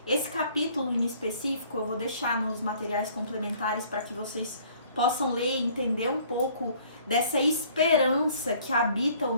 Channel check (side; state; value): both; inverted; correlation -0.56